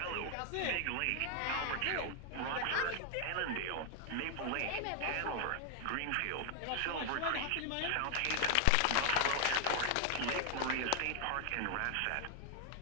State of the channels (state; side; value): different; both; correlation 0.00